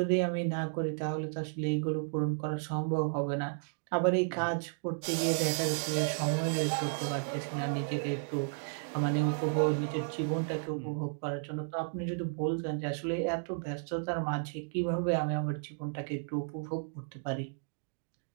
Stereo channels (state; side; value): silent; left; digital silence